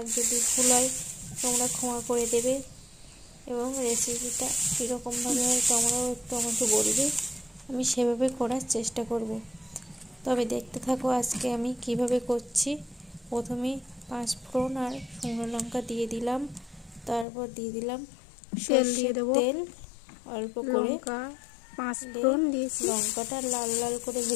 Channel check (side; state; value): right; drops out; at 17.2 s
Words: যদি ভুল হয় তোমরা ক্ষমা করে দেবে, এবং রেসিপিটা কীরকমভাবে হয় তোমরাও একটু আমাকে বলবে, আমি সেভাবে করার চেষ্টা করব। তবে দেখতে থাকো আজকে আমি কিভাবে করছি। প্রথমে 5 ফোড়ন আর শুকনো লঙ্কা দিয়ে দিলাম, তারপর দিয়ে দিলাম সরষের তেল অল্প করে। 5 ফোড়ন দিয়েছি, লঙ্কাটা লাল লাল করে